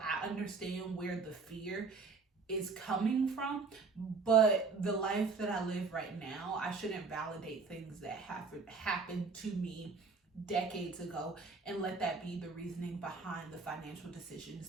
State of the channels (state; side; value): quieter; left; 4.4 dB